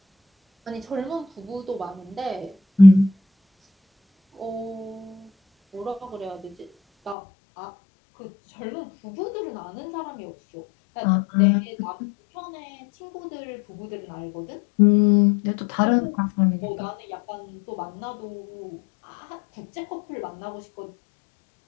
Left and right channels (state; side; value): drops out; right; at 7.2 s